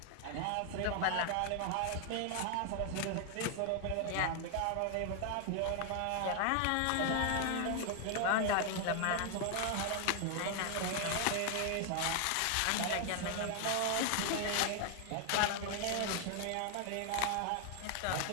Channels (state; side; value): different; both; correlation 0.00